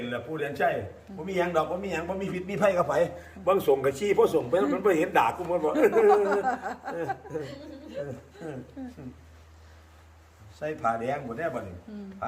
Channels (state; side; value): identical; both; correlation 1.00